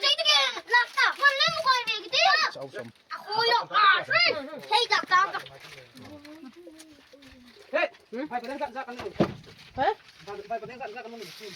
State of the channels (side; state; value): both; identical; correlation 1.00